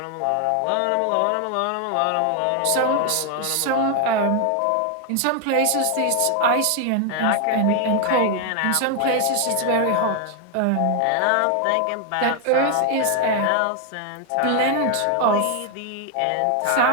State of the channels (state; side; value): different; both; correlation 0.00